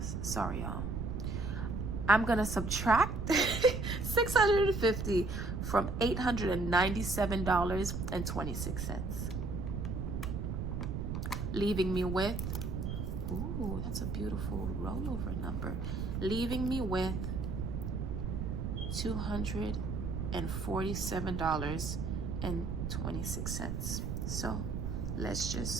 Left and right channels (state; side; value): noise; right; rumble, 3 dB below the sound